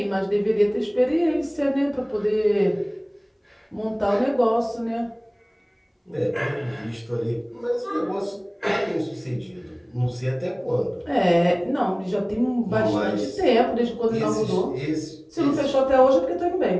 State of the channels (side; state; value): both; identical; correlation 1.00